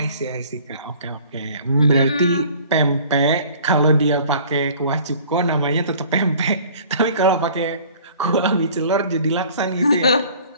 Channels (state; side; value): inverted; both; correlation -0.51